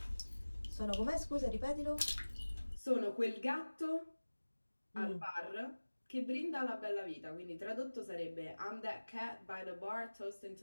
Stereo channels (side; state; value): both; inverted; correlation -1.00